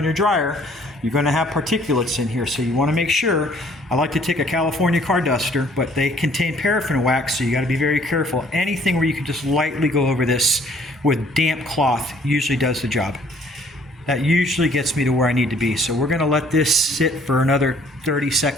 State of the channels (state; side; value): normal; both; correlation 0.60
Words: your dryer, you're going to have particulates in here. So you want to make sure. I like to take a California car duster, but they contain paraffin wax, so you got to be very careful. Anything where you can just lightly go over this with damp cloth usually does the job. That usually gets me to where I need to be. So we're going to let this sit for another 30